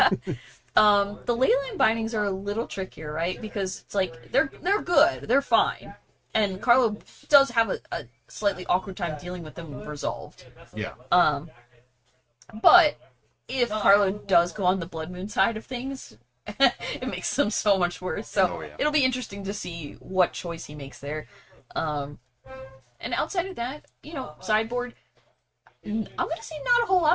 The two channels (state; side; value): identical; both; correlation 1.00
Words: The leyline bindings are a little trickier, right? Because it's like they're good, they're fine, and Carlo does have a slightly awkward time dealing with them resolved. Yeah. But if Carlo does go on the Blood Moon side of things, it makes them so much worse. So Oh, yeah. it'll be interesting to see what choice he makes there. And outside of that, you know, sideboard. I'm gonna say not a whole